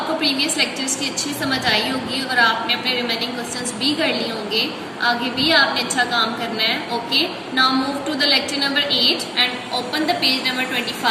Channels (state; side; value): identical; both; correlation 1.00